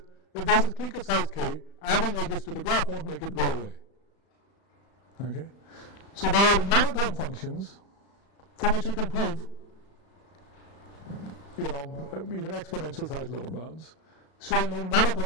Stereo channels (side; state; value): right; late; 35 ms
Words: if there's a clique of size k, adding edges to the graph won't make it go away. Okay? So there are monotone functions for which we can prove, you know, even exponential size lower bounds, showing no